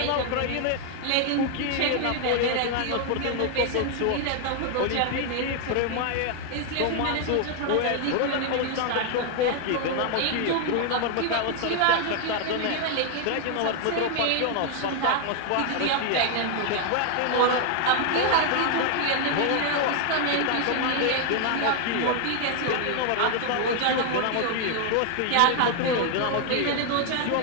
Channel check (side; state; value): both; different; correlation 0.00